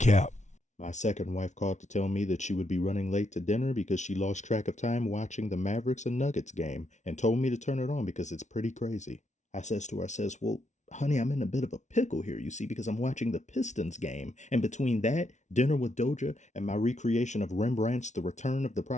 My second wife called to tell me that she would be running late to dinner because she lost track of time watching the Mavericks and Nuggets game and told me to turn it on because it's pretty crazy. I says to her, well, honey, I'm in a bit of a pickle here, you see, because I'm watching the Pistons game. And between that, dinner with Doja, and my recreation of Rembrandt's The Return of the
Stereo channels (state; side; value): late; right; 0.34 ms